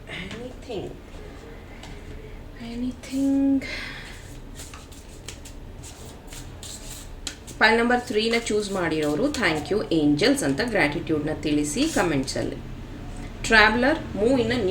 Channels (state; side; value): identical; both; correlation 1.00